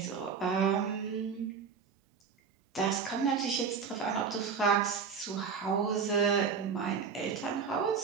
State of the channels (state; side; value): quieter; left; 6.1 dB